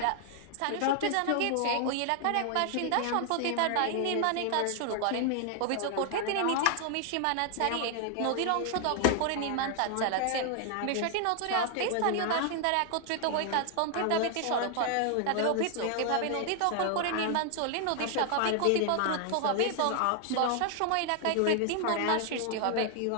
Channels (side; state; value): both; different; correlation 0.00